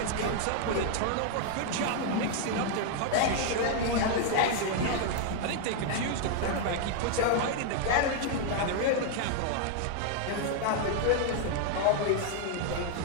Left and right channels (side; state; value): both; different; correlation 0.00